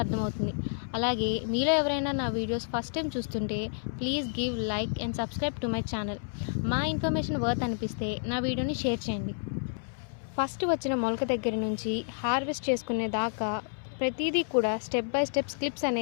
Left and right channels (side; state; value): right; silent; 58 dB below the other